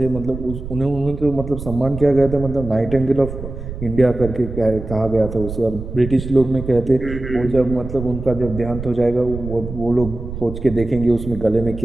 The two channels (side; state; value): right; noise; rumble, 9 dB below the sound